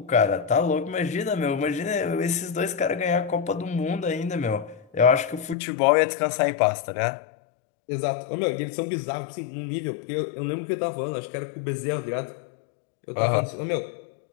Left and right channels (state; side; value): drops out; right; at 5.6 s